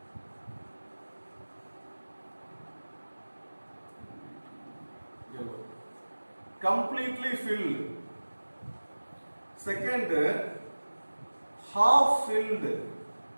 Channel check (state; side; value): inverted; both; correlation -1.00